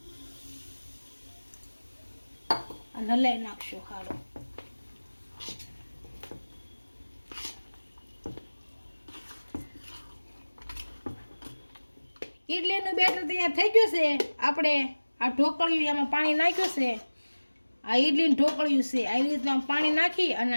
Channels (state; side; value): inverted; both; correlation -1.00